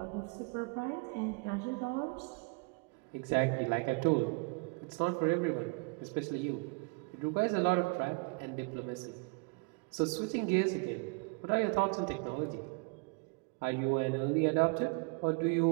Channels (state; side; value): quieter; left; 33.0 dB